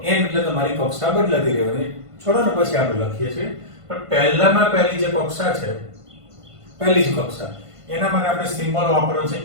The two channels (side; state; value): left; late; 1.5 ms